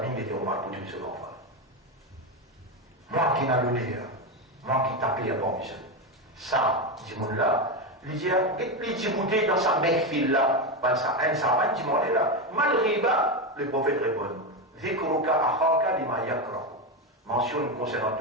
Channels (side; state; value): both; normal; correlation 0.13